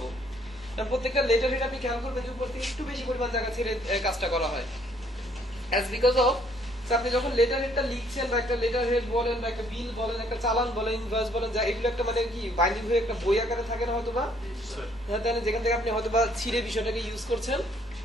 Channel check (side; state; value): both; normal; correlation 0.64